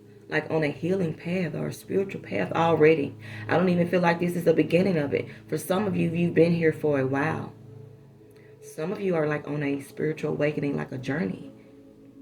like on a healing path or a spiritual path already. I don't even feel like this is the beginning of it. For some of you, you've been here for a while. Some of you are like on a spiritual awakening, like a journey.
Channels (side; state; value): both; identical; correlation 1.00